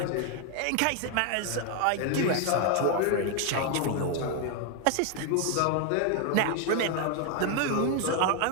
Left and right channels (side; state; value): both; different; correlation 0.00